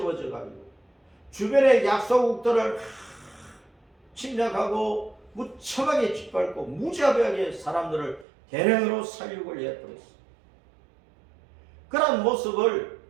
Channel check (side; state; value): left; drops out; at 8.2 s